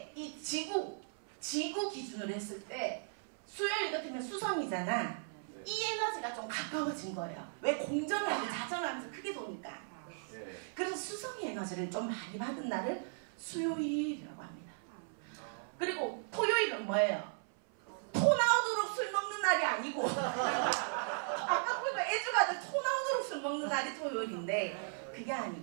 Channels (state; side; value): silent; left; 53 dB below the other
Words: 이 지구 기준으로 했을 때 수요일 같으면 수성이잖아. 이 에너지가 좀 가까워진 거예요. 왜 공전할 때 자전을 하면서 크게 도니까. 네. 그래서 수성의 에너지를 좀 많이 받은 날을 수요일이라고 합니다. 그리고 토요일은 뭐예요? 토 나오도록 술 먹는 날이 아니고 아까 보니까 애주가들 토 나오도록 술 먹는 날이 토요일인데 그게